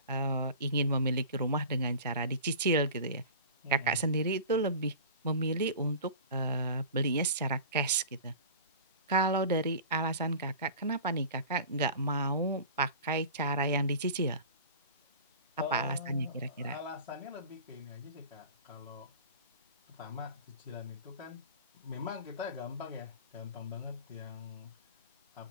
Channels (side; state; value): both; inverted; correlation -0.38